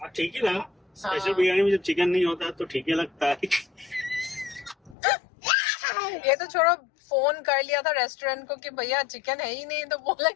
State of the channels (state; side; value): drops out; right; at 5.0 s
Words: ठीक ही लगा। स्पेशल बिरयानी में जब चिकन नहीं होता तो ठीक ही लगता है। ये तो छोड़ो, फोन कर लिया था रेस्टोरेंट को कि भैया चिकन है ही नहीं, तो बोला